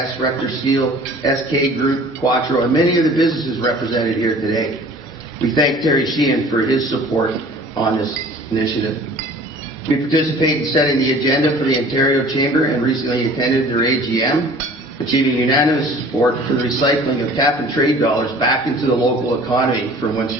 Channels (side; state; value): both; normal; correlation 0.47